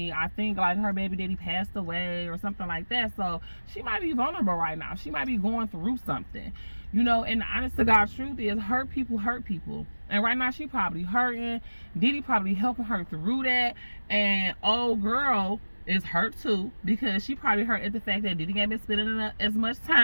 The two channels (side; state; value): both; inverted; correlation -1.00